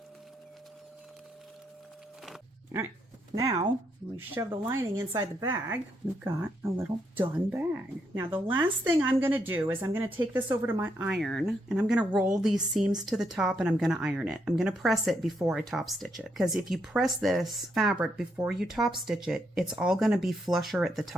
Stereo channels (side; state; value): both; normal; correlation 0.77